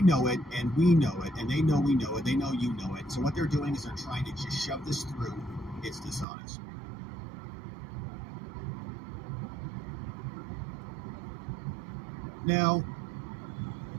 know it, and we know it, and they know we know it, they know you know it. So what they're doing is they're trying to just shove this through. It's dishonest. Now,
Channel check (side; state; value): left; drops out; at 6.2 s